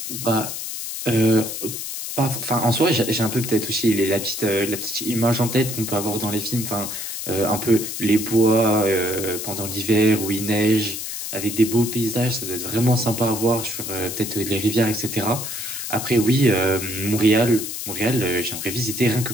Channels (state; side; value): noise; left; hiss, 6 dB below the sound